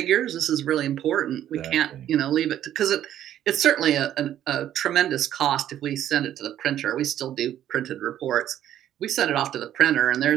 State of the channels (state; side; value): quieter; left; 11.4 dB